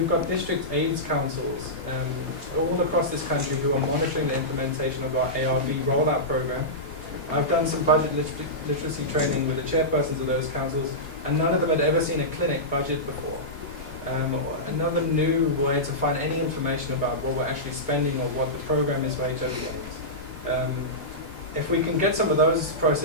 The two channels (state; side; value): normal; both; correlation -0.15